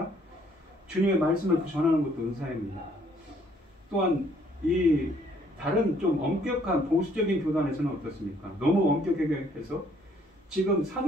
주님의 말씀을 전하는 것도 은사입니다. 또한 이 다른 좀 엄격한 보수적인 교단에서는 어떻습니까? 너무 엄격하게 해서 지금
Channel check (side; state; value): both; normal; correlation 0.64